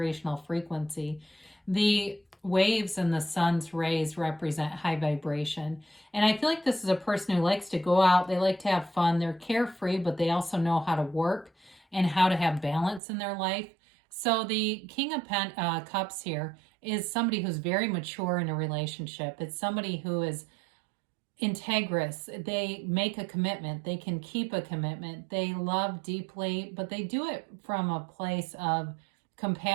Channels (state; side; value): drops out; left; at 13.0 s